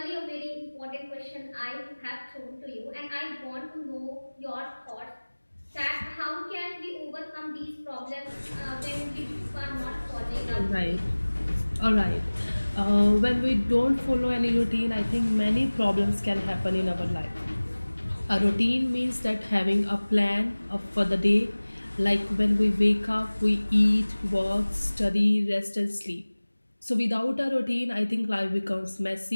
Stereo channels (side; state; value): both; inverted; correlation -1.00